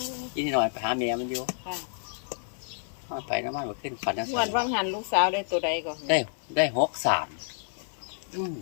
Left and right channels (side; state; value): right; silent; 55 dB below the other